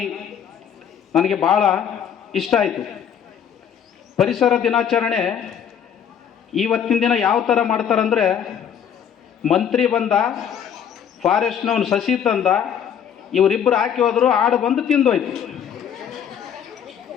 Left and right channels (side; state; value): right; quieter; 8.4 dB